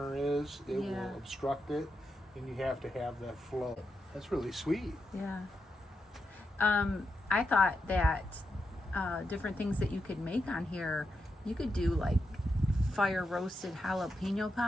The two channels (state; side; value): normal; both; correlation 0.86